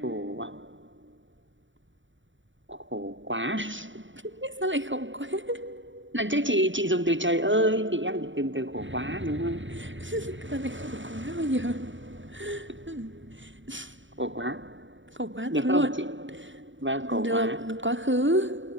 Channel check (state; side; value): late; left; 0.55 ms